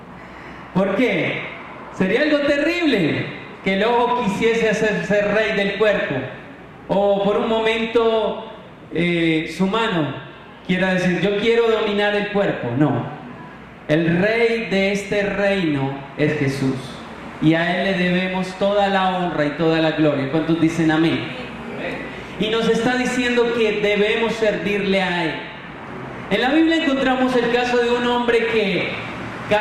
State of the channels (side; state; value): both; identical; correlation 1.00